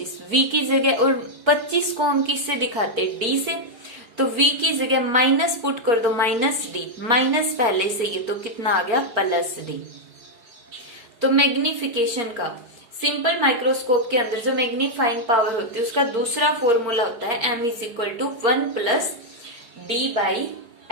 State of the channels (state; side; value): late; left; 4.8 ms